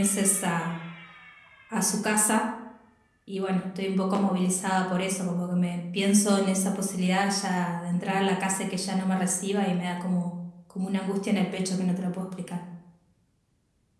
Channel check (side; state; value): both; identical; correlation 1.00